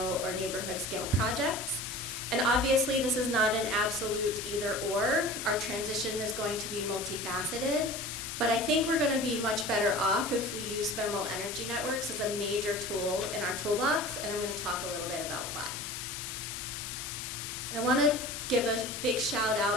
or neighborhood scale projects. And obviously this is not an absolute either or. Our transition is going to be multifaceted, but I think we're going to be much better off if we use thermal energy networks as a major tool in our toolbox, and I'm going to talk a little bit about why. And I want to give a big shout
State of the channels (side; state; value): left; noise; hiss, 6 dB below the sound